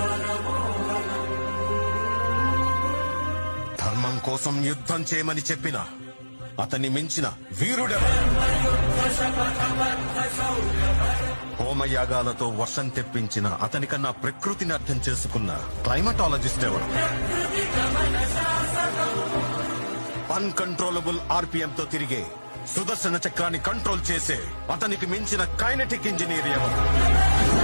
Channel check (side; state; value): both; inverted; correlation -1.00